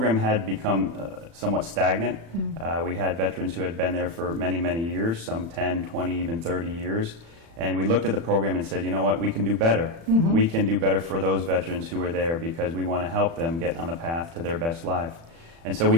had become somewhat stagnant. We had veterans who had been there for many, many years, some 10, 20, even 30 years. And we looked at the program and said, you know what, we can do better. We can do better for those veterans who are there because we want to help them get on the path to their best life. And so we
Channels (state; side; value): late; left; 36 ms